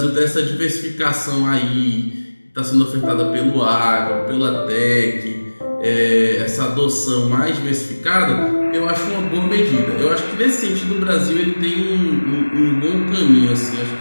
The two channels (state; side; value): inverted; both; correlation -1.00